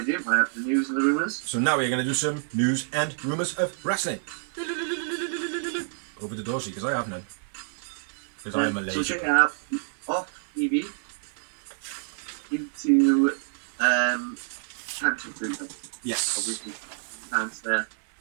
do. I have the news and the rumours. So now we're going to do some news and rumours of wrestling. Over the Dorsey, because I have none. Because I am a lazy. So check it out. Off TV into cancer treatment. Yes. Obviously, cancer.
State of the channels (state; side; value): silent; left; digital silence